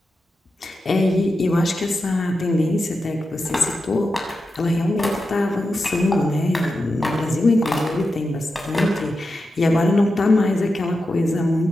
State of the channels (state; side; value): normal; both; correlation 0.90